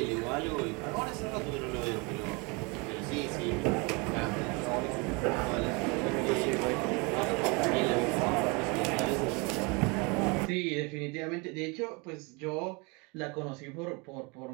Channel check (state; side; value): quieter; left; 29.3 dB